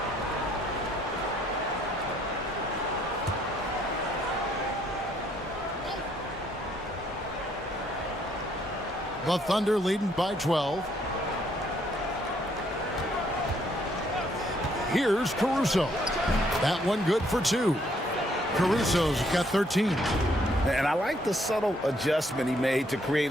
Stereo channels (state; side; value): normal; both; correlation 0.68